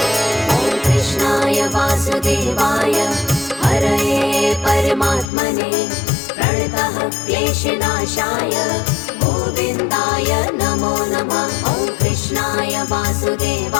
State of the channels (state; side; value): drops out; right; at 5.3 s